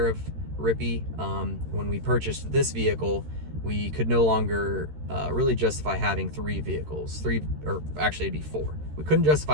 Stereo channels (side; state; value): left; late; 13 ms